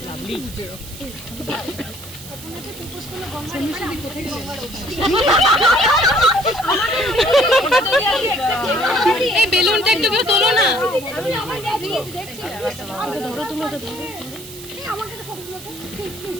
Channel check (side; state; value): right; noise; hiss, 15 dB below the sound